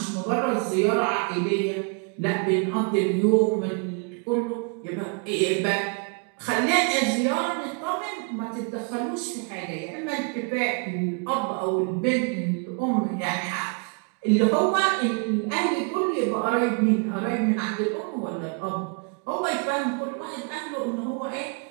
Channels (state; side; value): quieter; left; 35.4 dB